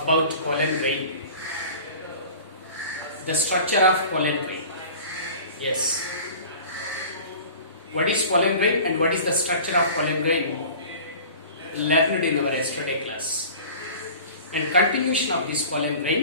pollen grain, the structure of pollen grain. Yes. What is pollen grain and what is the structure of pollen grain? Learned in our yesterday class. And continuation of this pollen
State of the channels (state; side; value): inverted; both; correlation -0.41